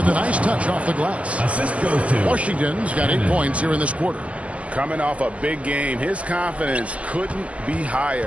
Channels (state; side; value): late; left; 0.063 ms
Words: a nice touch off the glass. Assist goes to Washington's got 8 points here in this quarter. Coming off a big game, his confidence couldn't be